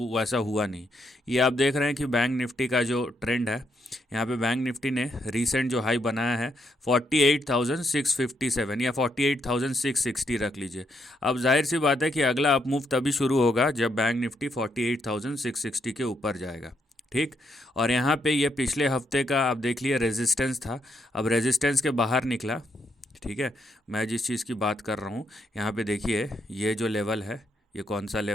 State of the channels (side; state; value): both; normal; correlation 0.77